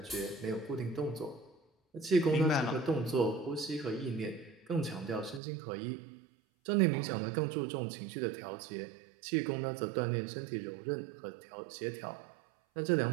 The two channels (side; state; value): left; drops out; at 5.4 s